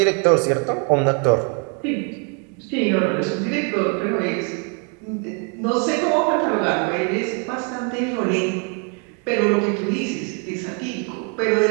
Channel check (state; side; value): quieter; left; 35.6 dB